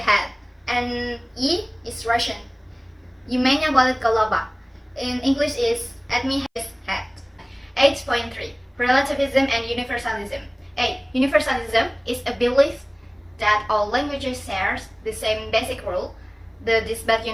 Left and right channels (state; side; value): identical; both; correlation 1.00